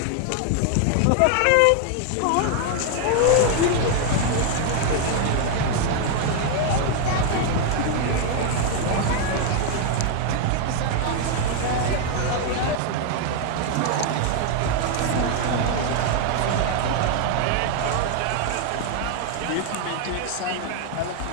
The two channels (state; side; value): different; both; correlation 0.00